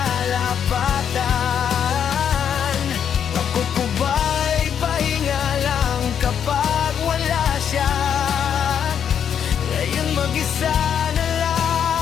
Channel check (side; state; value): right; quieter; 8.4 dB